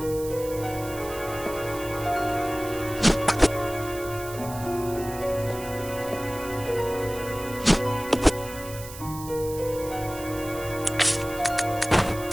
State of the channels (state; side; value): noise; right; hiss, 14 dB below the sound